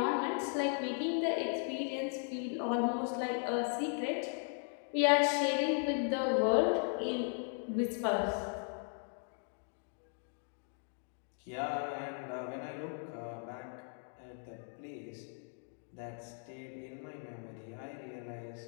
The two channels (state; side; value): silent; right; 53 dB below the other